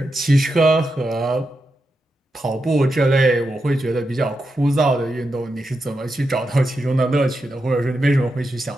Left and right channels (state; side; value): normal; both; correlation 0.87